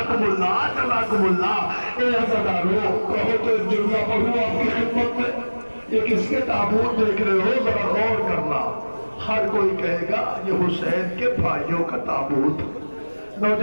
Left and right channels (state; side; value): inverted; both; correlation -1.00